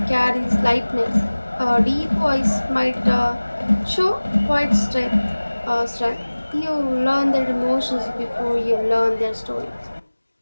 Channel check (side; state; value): both; inverted; correlation -1.00